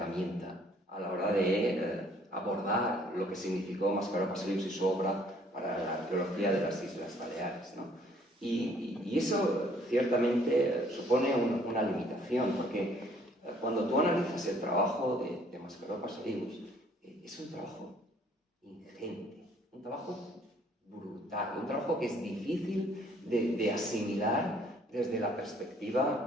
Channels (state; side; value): normal; both; correlation 0.61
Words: a la hora de abordar lo que significó Mascaró Pastorius y su obra para la arqueología de las Islas Baleares, ¿no? Y eso ciertamente supone una limitación, porque cuando tú analizas el trabajo de Mascaró Pastorius, es un trabajo ingente, un trabajo brutal, un trabajo que es difícil de asimilar desde la